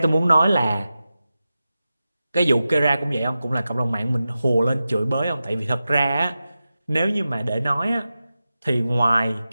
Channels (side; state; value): both; inverted; correlation -0.93